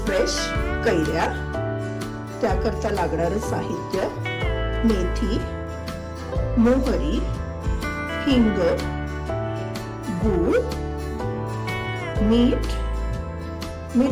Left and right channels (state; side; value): identical; both; correlation 1.00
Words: फ्रेश कैऱ्या। त्याकरता लागणारं साहित्य मेथी, मोहरी, हिंग, गूळ, मीठ,